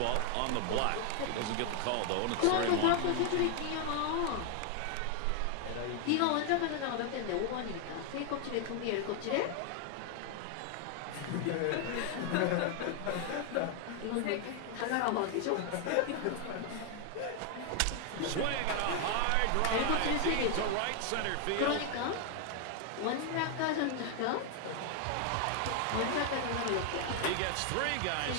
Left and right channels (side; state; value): both; different; correlation 0.00